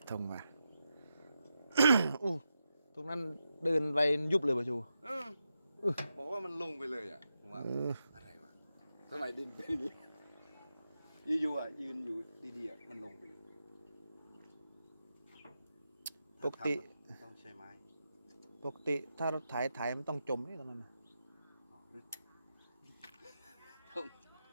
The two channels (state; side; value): inverted; both; correlation -0.88